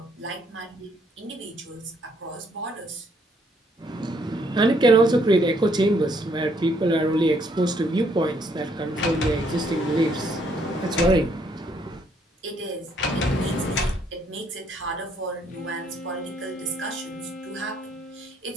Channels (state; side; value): normal; both; correlation 0.68